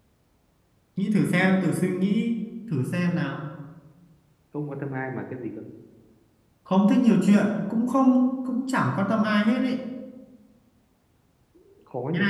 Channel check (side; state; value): both; identical; correlation 1.00